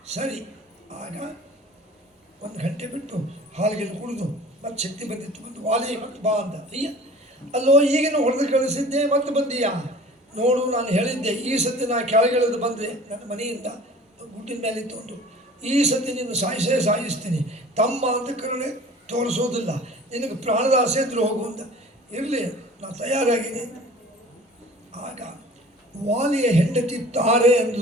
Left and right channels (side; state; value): both; normal; correlation 0.45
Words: ಸರಿ. ಆಗ 1 ಗಂಟೆ ಬಿಟ್ಟು ಹಾಲಿಗೆ ಕುಡಿದು ಮತ್ತೆ ಶಕ್ತಿ ಬಂದಿತ್ತು, ಬಂದು ವಾಲಿ ಮತ್ತೆ ಬಾ ಅಂತ. ಅಯ್ಯ, ಅಲ್ಲೋ ಈಗಿನ ಹೊಡೆದು ಕಳಿಸಿದ್ದೆ, ಮತ್ತೆ ಬಂದೀಯಾ? ನೋಡು, ನಾನು ಹೇಳಿದ್ದೆ ಈ ಸತಿ ನಾನು ಕೆಳಗಿಳಿದು ಬಂದರೆ ನನ್ನ ಮನೆಯಿಂದ ಗುಡ್ಡಿನ ಮೇಲೆ ತಂದು ಈ ಸತಿ ನಿನ್ನ ಸಾಯಿಸ್ತೀನಿ, ತಮ್ಮ ಅಂತ ಕರುಣೆ ತೋರಿಸೋದಿಲ್ಲ, ನಿನಗೆ ಪ್ರಾಣದ ಆಸೆ ಇದ್ರೂ ಹೋಗು ಅಂತ. ಇರಲಿ, ನಾನು ತಯಾರಾಗಿದ್ದೀನಿ. ಆಗ ವಾಲಿಯ ಹೆಂಡತಿ ತಾರೆ